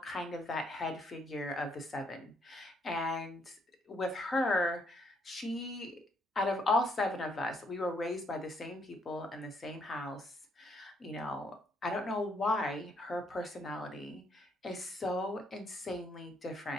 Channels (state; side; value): normal; both; correlation 0.71